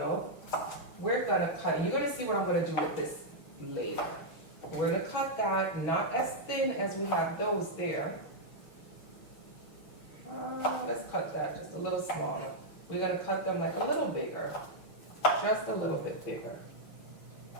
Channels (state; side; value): late; right; 6.4 ms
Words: we're gonna cut, you're gonna see what I'm gonna do with this later. We're gonna cut that not as thin as we have those there. Let's cut that just a little smaller. We're gonna cut them like a little bigger, just a little bit bigger.